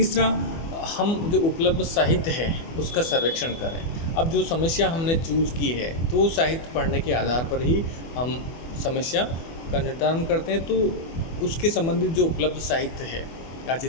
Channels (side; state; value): right; late; 24 ms